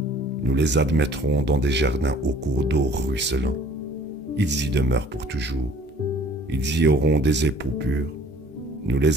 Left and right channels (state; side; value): normal; both; correlation 0.54